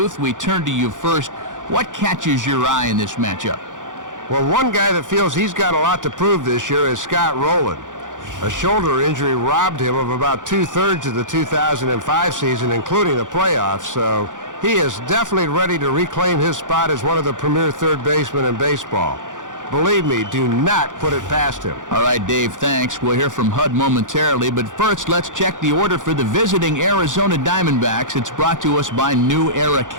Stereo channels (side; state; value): left; late; 0.87 ms